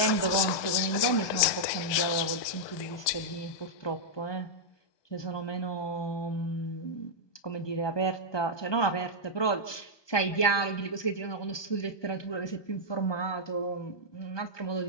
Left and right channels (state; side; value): late; right; 1.2 ms